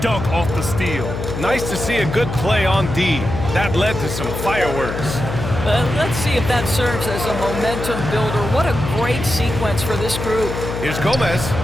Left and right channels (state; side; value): noise; left; hum, 5 dB below the sound